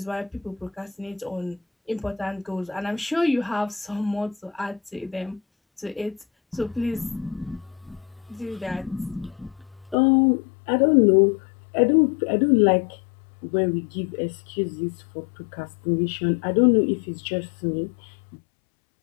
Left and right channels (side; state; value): right; drops out; at 10.0 s